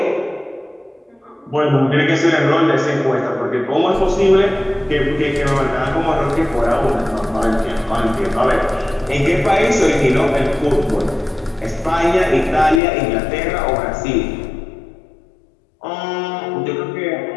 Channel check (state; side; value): drops out; right; at 12.8 s